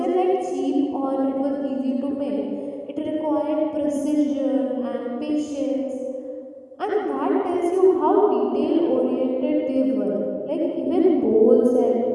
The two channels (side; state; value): both; identical; correlation 1.00